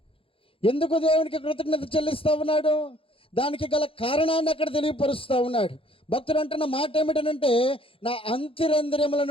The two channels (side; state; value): right; late; 0.27 ms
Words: ఎందుకు దేవునికి కృతజ్ఞత చెల్లిస్తా ఉన్నాడు? దానికి గల కారణాన్ని అక్కడ తెలియపరుస్తూ ఉన్నాడు. భక్తుడు అంటున్న మాట ఏమిటనంటే, నా